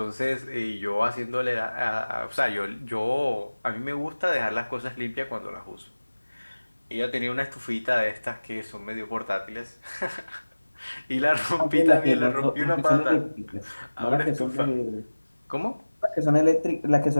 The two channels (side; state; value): both; inverted; correlation -1.00